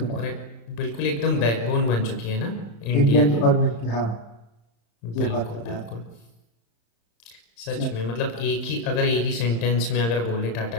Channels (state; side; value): late; right; 35 ms